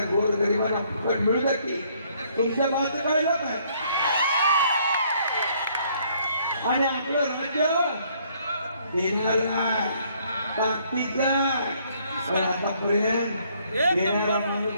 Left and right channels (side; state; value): both; inverted; correlation -0.65